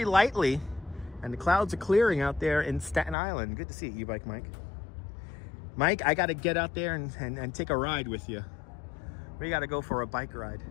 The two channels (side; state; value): right; drops out; at 3.2 s